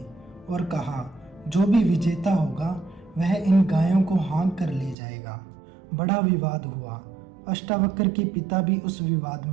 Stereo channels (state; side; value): drops out; left; at 5.0 s